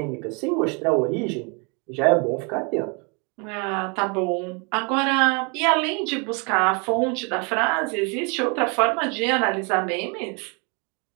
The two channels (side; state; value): left; quieter; 33.1 dB